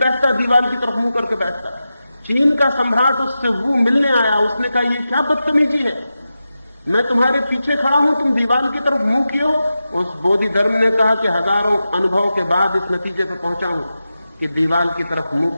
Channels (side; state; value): both; inverted; correlation -0.92